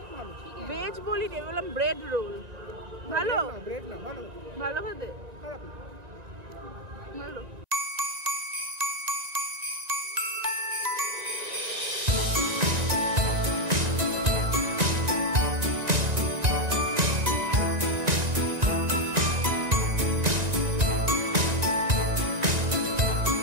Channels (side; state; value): left; late; 1.9 ms